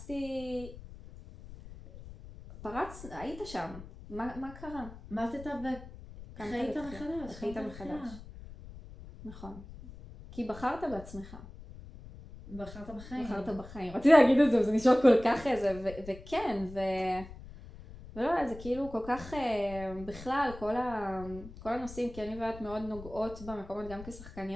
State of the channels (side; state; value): left; noise; rumble, 15 dB below the sound